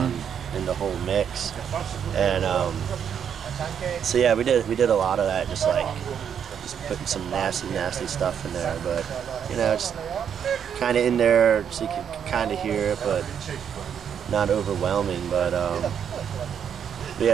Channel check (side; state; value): left; quieter; 8.2 dB